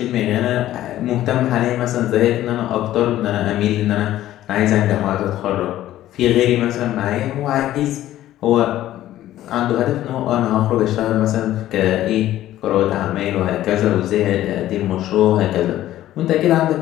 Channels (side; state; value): right; quieter; 13.7 dB